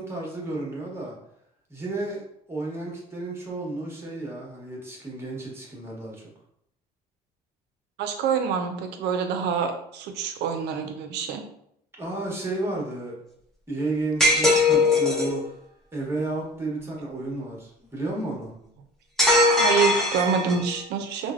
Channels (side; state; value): both; normal; correlation 0.38